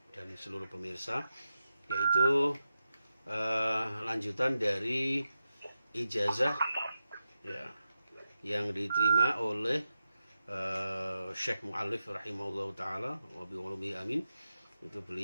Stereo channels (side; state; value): both; inverted; correlation -0.89